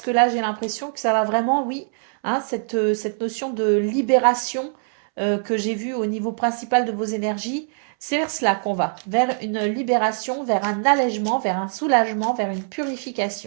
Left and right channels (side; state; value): left; silent; 64 dB below the other